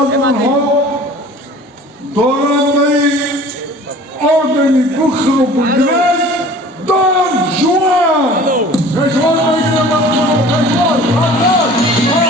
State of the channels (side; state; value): both; normal; correlation 0.45